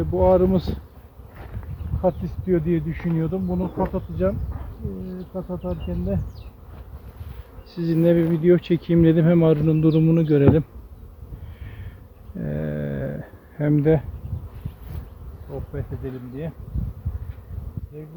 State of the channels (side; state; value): both; identical; correlation 1.00